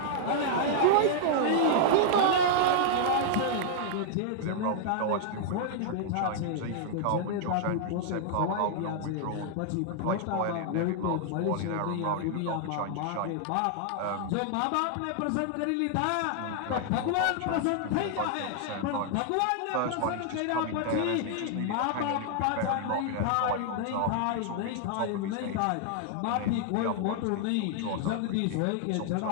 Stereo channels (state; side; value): different; both; correlation -0.01